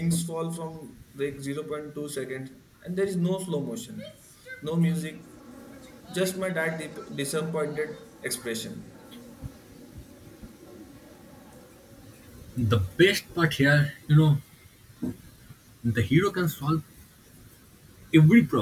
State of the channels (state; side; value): identical; both; correlation 1.00